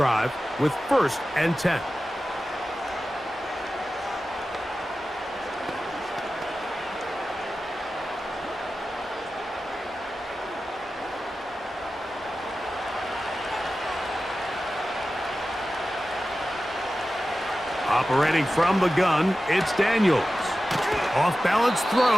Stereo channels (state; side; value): normal; both; correlation 0.94